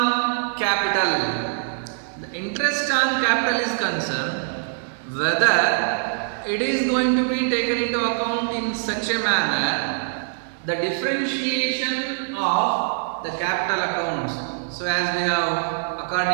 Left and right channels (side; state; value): left; silent; digital silence